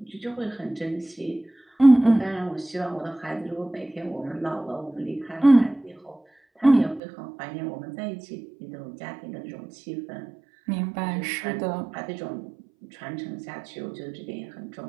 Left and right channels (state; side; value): drops out; left; at 7.0 s